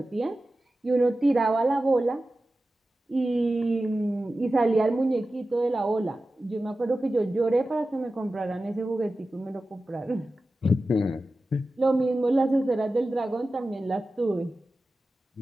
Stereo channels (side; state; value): both; normal; correlation 0.94